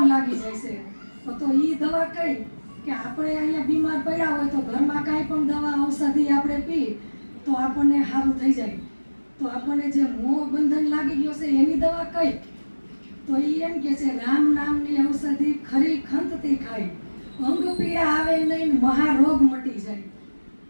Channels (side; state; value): both; inverted; correlation -1.00